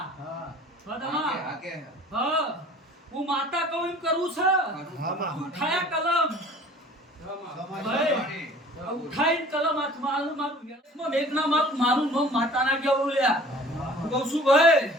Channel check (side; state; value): both; normal; correlation 0.48